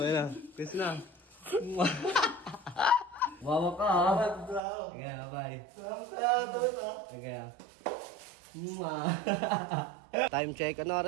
na. Kiss na. Wawa ka ha. Sige, bye. Sige. Time check. Ano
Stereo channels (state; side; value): drops out; left; at 4.6 s